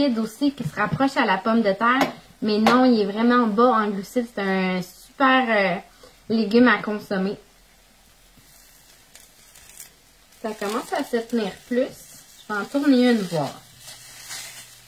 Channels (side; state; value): both; identical; correlation 1.00